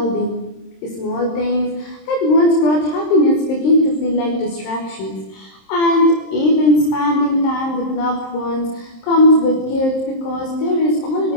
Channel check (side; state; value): right; late; 26 ms